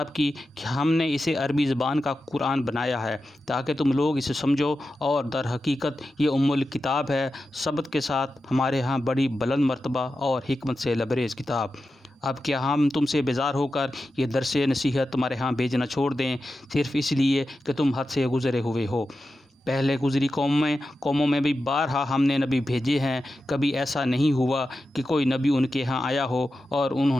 کی کہ ہم نے اسے عربی زبان کا قرآن بنایا ہے تاکہ تم لوگ اسے سمجھو، اور در حقیقت یہ ام الکتاب ہے، ثبت کے ساتھ ہمارے ہاں بڑی بلند مرتبہ اور حکمت سے لبریز کتاب۔ اب کیا ہم تم سے بیزار ہو کر یہ درس نصیحت تمہارے ہاں بھیجنا چھوڑ دیں، صرف اس لیے کہ تم حد سے گزرے ہوئے ہو؟ پہلے گزری قوموں میں بھی بارہا ہم نے نبی بھیجے ہیں، کبھی ایسا نہیں ہوا کہ کوئی نبی ان کے ہاں آیا ہو اور انہوں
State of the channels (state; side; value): normal; both; correlation 0.91